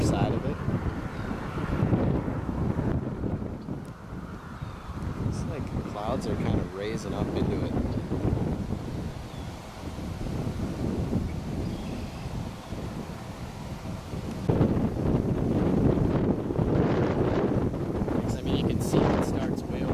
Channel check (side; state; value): both; identical; correlation 1.00